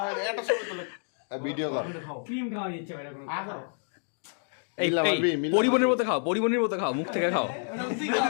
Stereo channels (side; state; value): right; silent; 59 dB below the other